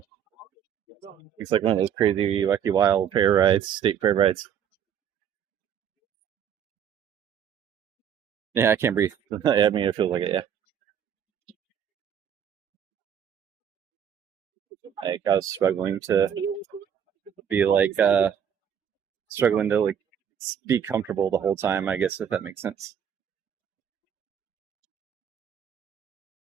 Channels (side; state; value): left; quieter; 8.5 dB